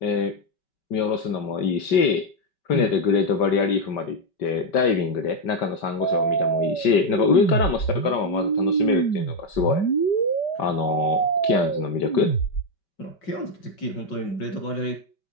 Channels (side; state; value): right; late; 5.2 ms